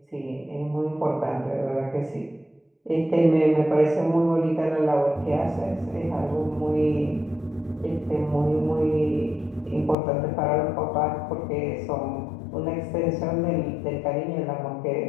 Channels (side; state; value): right; drops out; at 10.0 s